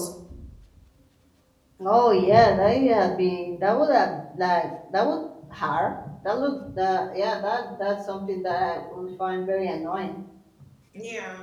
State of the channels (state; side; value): identical; both; correlation 1.00